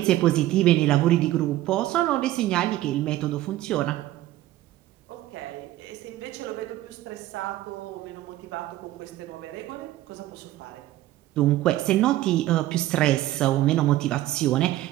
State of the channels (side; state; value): left; quieter; 15.1 dB